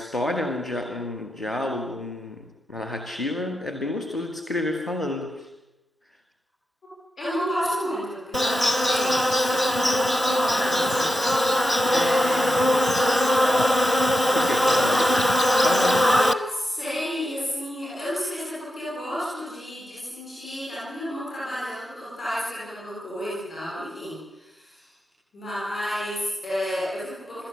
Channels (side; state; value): both; normal; correlation 0.89